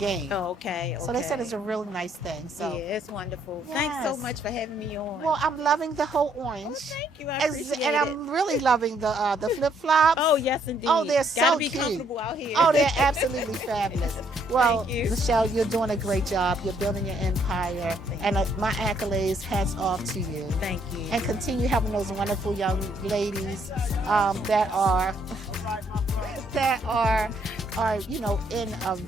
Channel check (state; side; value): normal; both; correlation 0.69